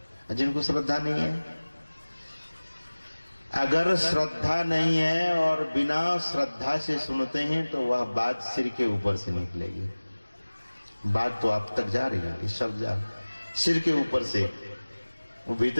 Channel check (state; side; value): inverted; both; correlation -1.00